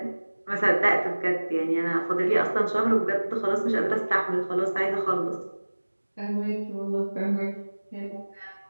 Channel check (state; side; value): inverted; both; correlation -1.00